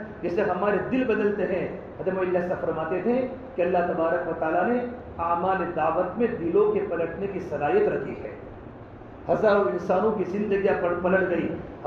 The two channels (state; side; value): identical; both; correlation 1.00